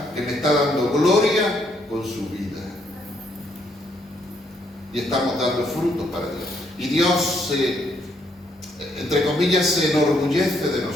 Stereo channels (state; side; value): normal; both; correlation 0.72